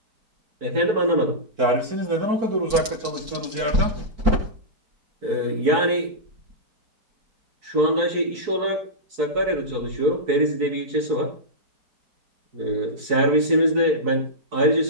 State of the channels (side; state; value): left; late; 4.5 ms